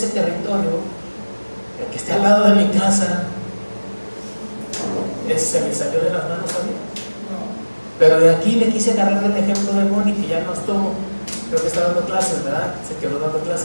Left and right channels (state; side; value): inverted; both; correlation -1.00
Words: territorio, el que esté al lado de mi casa, se me salió de las manos a mí. Pero de aquí le quise agarrar el ejemplo de Moni, que ya no estuvo, creo que está dando clases, ¿verdad? Se quedó dando